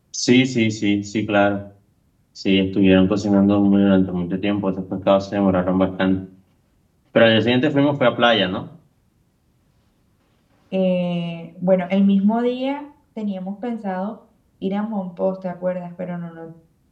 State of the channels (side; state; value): both; identical; correlation 1.00